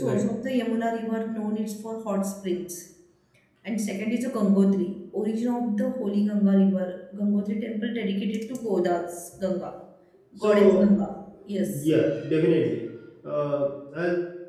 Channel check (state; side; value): identical; both; correlation 1.00